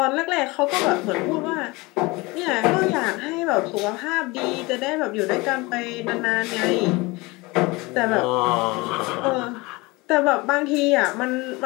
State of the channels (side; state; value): right; quieter; 23.7 dB